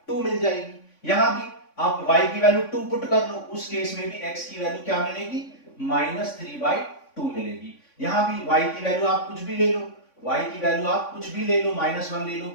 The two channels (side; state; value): right; late; 3.5 ms